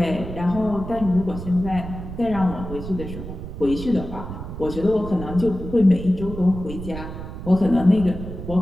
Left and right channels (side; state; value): right; noise; rumble, 9 dB below the sound